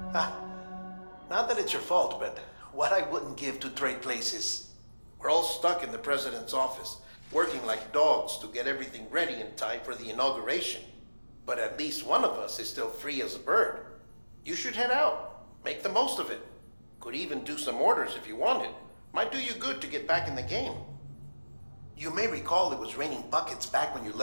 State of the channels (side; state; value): both; inverted; correlation -1.00